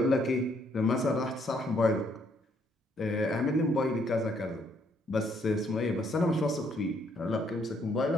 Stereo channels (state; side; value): normal; both; correlation 0.69